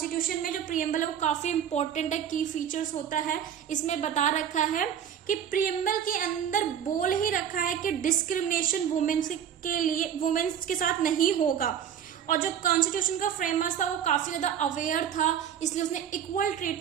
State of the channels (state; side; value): quieter; left; 9.0 dB